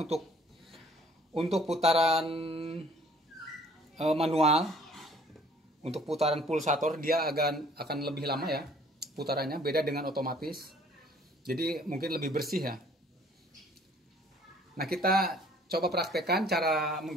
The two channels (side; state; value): both; normal; correlation 0.57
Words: putaran manual, untuk putaran pulsator dia akan lebih lama ya putarannya, beda dengan otomatis. Jadi mungkin lebih bersih ya. Nah kita coba praktekkan cara